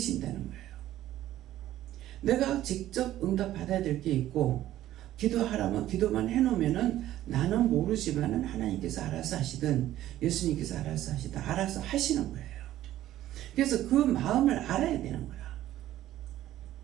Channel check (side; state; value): left; quieter; 13.6 dB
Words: 거예요. 내가 직접 응답 받아야 될 게 있고 기도하라면 기도만 해놓으면은 나는 모르지만은 하나님께서 알아서 하시든 예수님께서 알아서 하시든 알아서 하시는 거예요. 그래서 그 마음을 알아야 되는 거야.